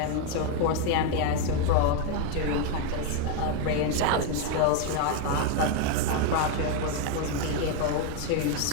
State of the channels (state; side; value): different; both; correlation 0.01